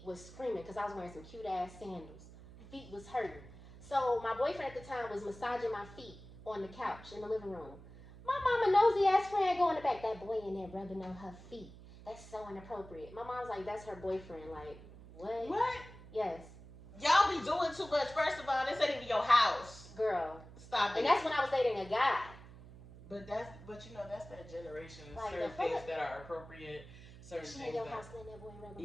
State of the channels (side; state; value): right; noise; hum, 17 dB below the sound